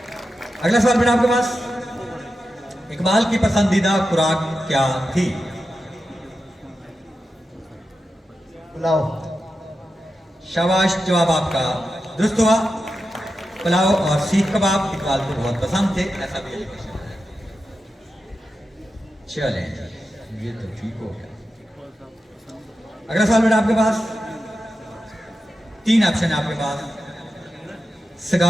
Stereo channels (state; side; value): normal; both; correlation 0.90